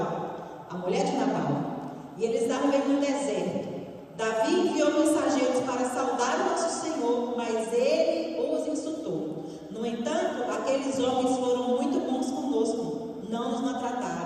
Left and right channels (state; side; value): identical; both; correlation 1.00